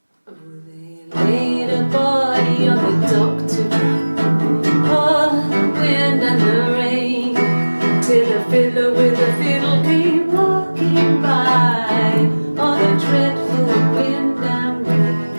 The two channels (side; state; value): both; inverted; correlation -1.00